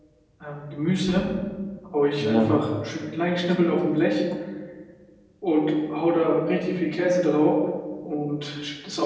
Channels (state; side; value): identical; both; correlation 1.00